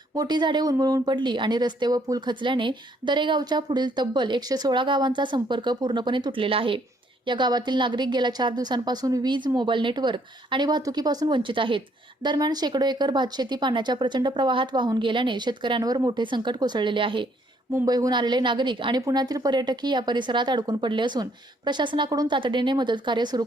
मोठी झाडे उन्मळून पडली आणि रस्ते व पूल खचल्याने दरेगावच्या पुढील तब्बल 116 गावांचा संपर्क पूर्णपणे तुटलेला आहे। या गावातील नागरिक गेल्या 4 दिवसांपासून वीज, मोबाईल नेटवर्क आणि वाहतुकीपासून वंचित आहेत। दरम्यान शेकडो एकर भातशेती पाण्याच्या प्रचंड प्रवाहात वाहून गेल्याने शेतकऱ्यांवर मोठे संकट कोसळलेले आहे। मुंबईहून आलेले नागरिक आणि पुण्यातील पर्यटकही या परिसरात अडकून पडले असून प्रशासनाकडून तातडीने मदत कार्य सुरू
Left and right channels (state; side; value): normal; both; correlation 0.67